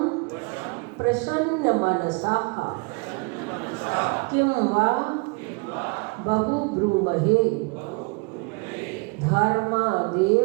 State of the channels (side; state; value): left; quieter; 31.0 dB